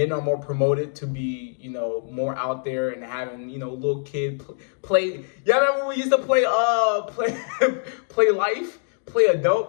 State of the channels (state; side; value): silent; right; digital silence